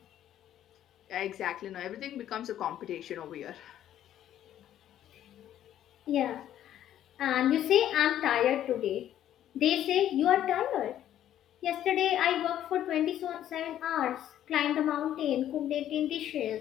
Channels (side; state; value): right; quieter; 11.4 dB